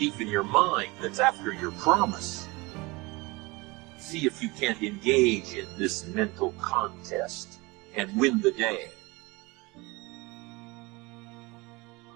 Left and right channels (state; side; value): quieter; left; 24.3 dB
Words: in your mind that's after your promise. See if you can't engage in this mental contest and win the day.